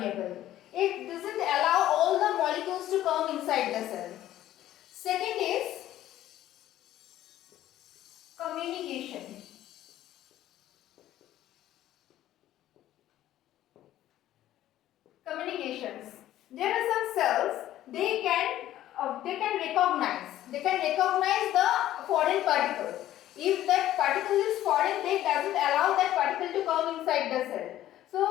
It doesn't allow all the molecules to come inside the cell. Second is communication. Communications. There are some cells, they can recognize the foreign particle. If that particle is foreign, they doesn't allow that particle to come inside the cell. So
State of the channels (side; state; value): right; quieter; 13.3 dB